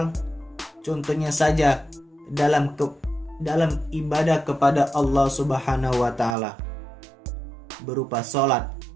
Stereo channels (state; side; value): drops out; left; at 6.4 s